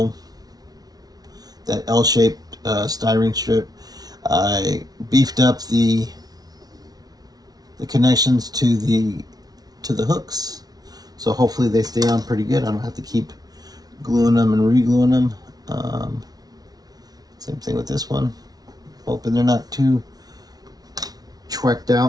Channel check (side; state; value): left; late; 0.19 ms